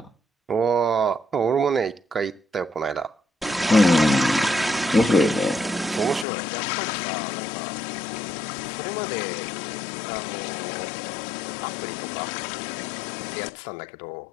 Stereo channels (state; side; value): drops out; right; at 6.2 s